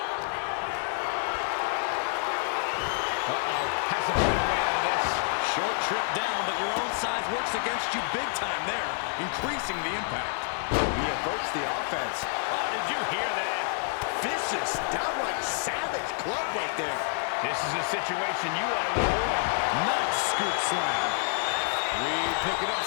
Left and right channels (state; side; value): silent; right; 59 dB below the other